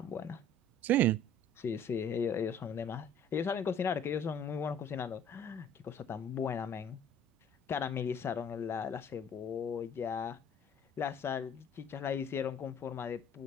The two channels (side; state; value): both; normal; correlation 0.53